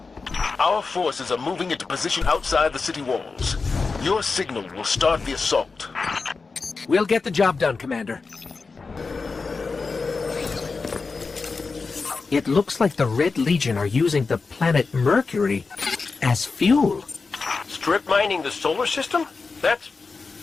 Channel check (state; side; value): quieter; right; 4.4 dB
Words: Our forces are moving into position outside the city walls. Your signal will start the assault. We'll get the job done, Commander. It looks like the Red Legion are using the planet Mercury as fuel. Strip mining the solar system? That's